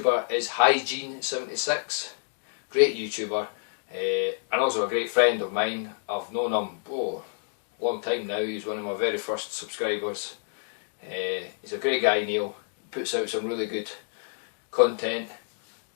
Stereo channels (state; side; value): silent; right; digital silence